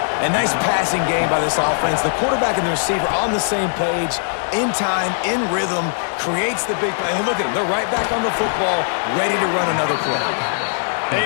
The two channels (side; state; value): right; silent; digital silence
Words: A nice passing game by this offense. The quarterback and the receiver on the same page, in time, in rhythm, creates the big play. And look at them. They're right back on the football, ready to run another play.